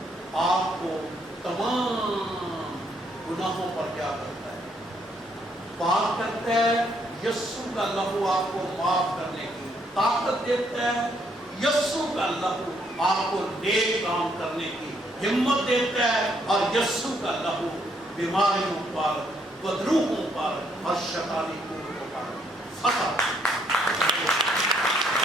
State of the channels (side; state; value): both; normal; correlation 0.71